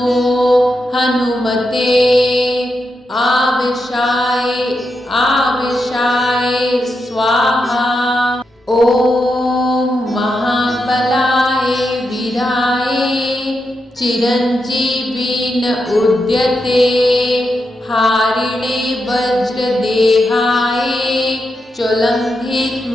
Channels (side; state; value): both; normal; correlation 0.86